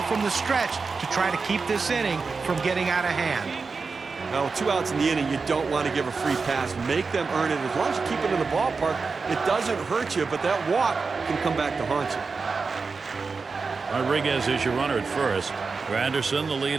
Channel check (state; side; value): quieter; left; 4.6 dB